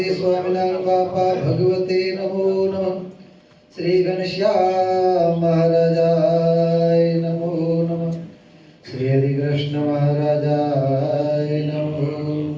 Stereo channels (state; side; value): identical; both; correlation 1.00